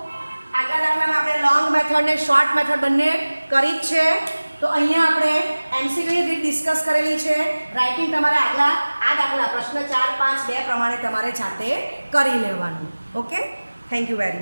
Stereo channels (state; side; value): inverted; both; correlation -1.00